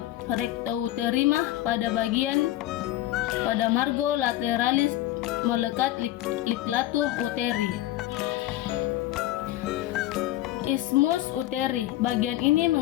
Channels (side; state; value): right; quieter; 15.0 dB